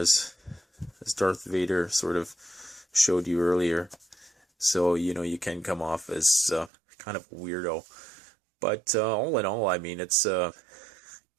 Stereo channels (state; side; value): drops out; left; at 6.7 s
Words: Darth Vader sort of showed you earlier. So, you know, you can come off as kind of a weirdo, but all in all, I mean, it